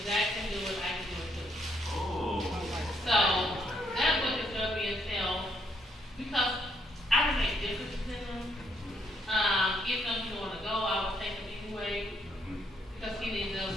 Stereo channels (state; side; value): normal; both; correlation 0.73